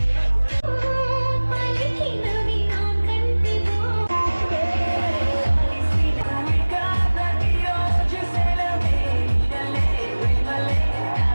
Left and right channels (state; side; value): inverted; both; correlation -1.00